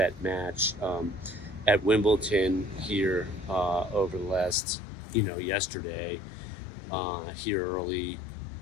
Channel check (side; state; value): right; drops out; at 4.5 s